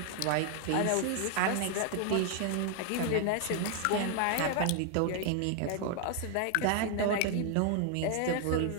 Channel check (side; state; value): both; different; correlation 0.00